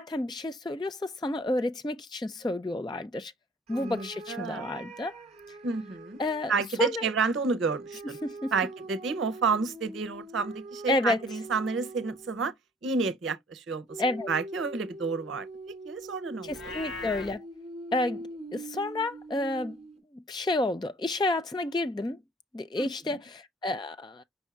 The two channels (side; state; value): both; normal; correlation 0.54